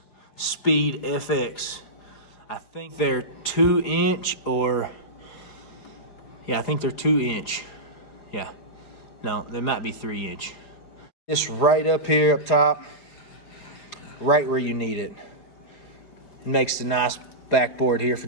Speed FX. I think they're 2-inch or, yeah, I think they're 2-inch. Yeah, no, they might be 3-inch. This right up here up top, right where you need it. It makes the nice backboard here for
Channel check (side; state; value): right; late; 4.8 ms